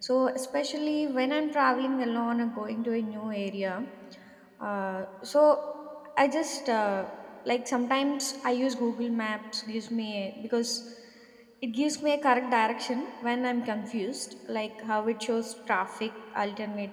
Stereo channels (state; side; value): identical; both; correlation 1.00